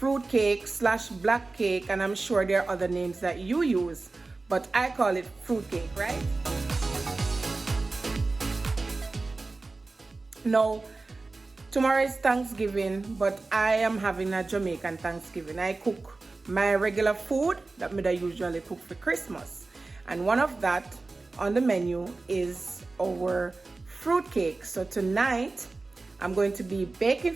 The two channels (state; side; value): quieter; left; 3.5 dB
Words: cake slash black cake, and I'm sure there are other names that you use, but I call it fruit cake, right? Now, tomorrow is Thanksgiving, but I am having a Jamaican Thanksgiving. I cook my regular food that I usually cook for Christmas. And one of that on the menu is our fruit cake. So tonight, I'm going to be baking